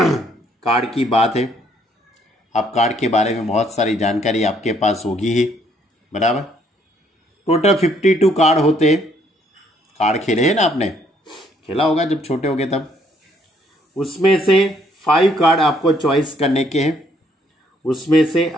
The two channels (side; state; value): both; normal; correlation 0.67